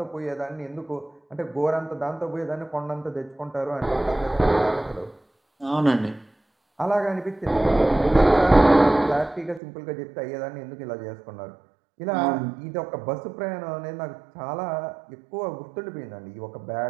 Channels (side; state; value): left; drops out; at 9.6 s